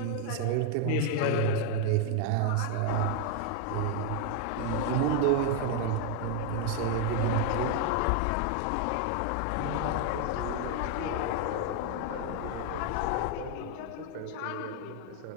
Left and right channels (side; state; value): both; different; correlation 0.00